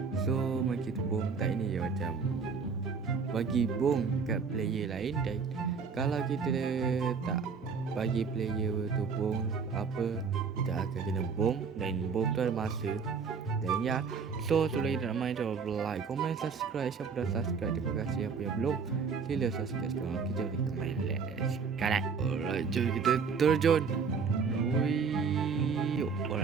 So Maki Bom Tak ni dia macam bagi bom kat player lain, dan kalau kita tak bagi player tu bom apa, kita akan kena bom, dan bom tu ada masa. Dan ya, so sebelum kita nak main, jangan lupa like, komen, subscribe. Siapa dah subscribe, terima kasih. Apa yang belum, sila subscribe sekarang. Kita boleh main sekarang. Alright, jom kita terjun. Wih,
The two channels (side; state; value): left; quieter; 5.5 dB